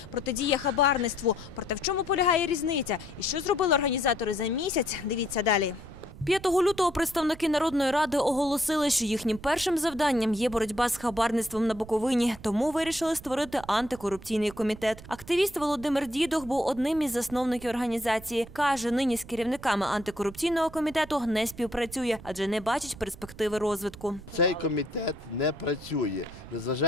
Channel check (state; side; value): noise; right; rumble, 17 dB below the sound